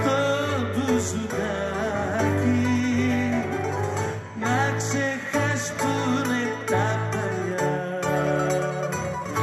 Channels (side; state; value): both; identical; correlation 1.00